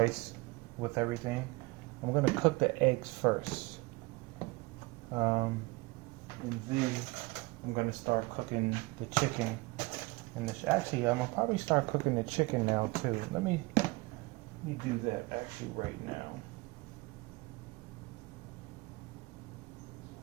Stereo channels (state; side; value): quieter; left; 23.4 dB